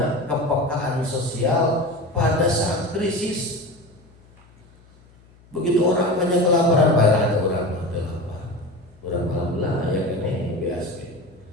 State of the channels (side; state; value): left; noise; hum, 27 dB below the sound